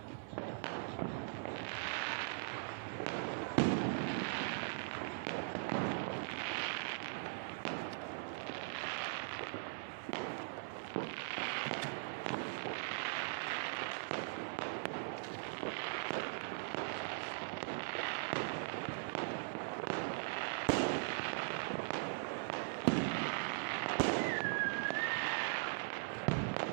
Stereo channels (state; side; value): silent; left; 51 dB below the other